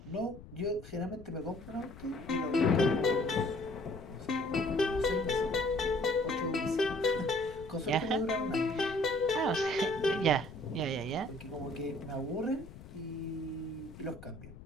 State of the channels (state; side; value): noise; left; rumble, 16 dB below the sound